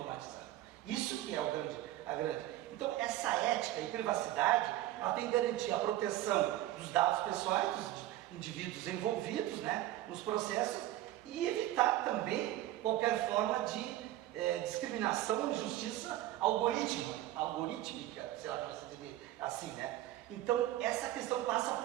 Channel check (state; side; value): quieter; left; 14.6 dB